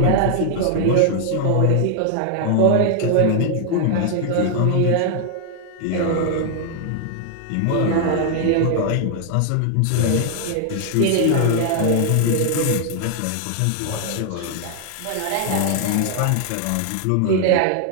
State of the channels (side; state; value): both; different; correlation 0.00